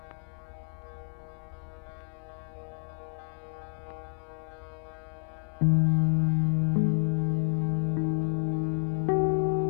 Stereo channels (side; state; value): right; silent; 57 dB below the other